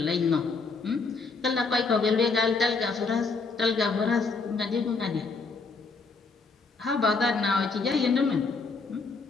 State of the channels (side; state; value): right; quieter; 4.2 dB